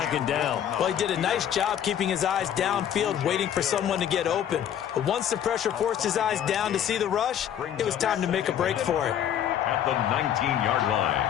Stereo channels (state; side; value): quieter; right; 9.9 dB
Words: down. Well, he did a nice job keeping his eyes downfield, waiting for someone to get open. But once the pressure forced his eyes down to see the rush, it was time to make a break for it. At the 19-yard